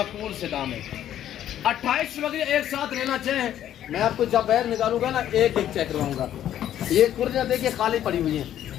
से दाम है। 28 बकरे एक साथ लेना चाहें, मैं आपको जब बाहर निकालूंगा ना एक एक चेक करवाऊंगा। ये कुर्लियाँ देखिए खाली पड़ी हुई हैं,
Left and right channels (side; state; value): right; quieter; 11.3 dB